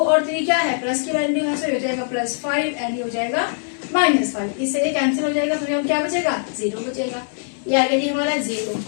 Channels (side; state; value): right; silent; 65 dB below the other